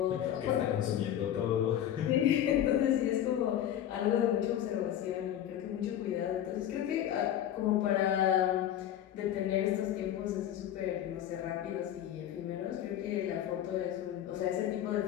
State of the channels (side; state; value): right; quieter; 11.0 dB